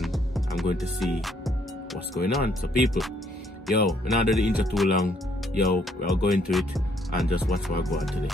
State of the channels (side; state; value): both; normal; correlation 0.68